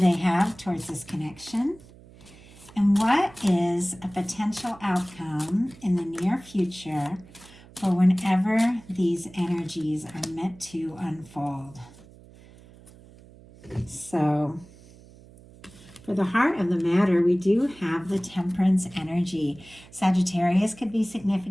have towards this connection? And what is a potential outcome in the near future for whenever these energies are meant to unfold? So, for the heart of the matter, we do have the Temperance energy. Sagittarius could be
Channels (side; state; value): right; noise; hum, 22 dB below the sound